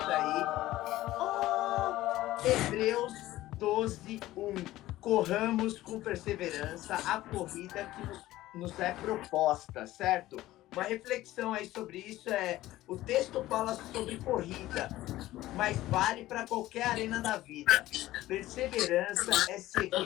aí. Hebreus 12:1. Corramos com perseverança a corrida que nos é proposta, certo? Uma reflexão aí sobre isso o texto fala sobre corrida, mas vale para qualquer arena da vida. Perseverança é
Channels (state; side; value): quieter; right; 15.9 dB